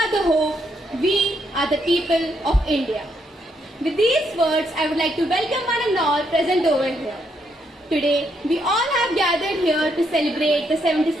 the hope, we are the people of India. With these words, I would like to welcome one and all present over here. Today, we all have gathered here to celebrate the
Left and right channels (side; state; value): both; normal; correlation 0.76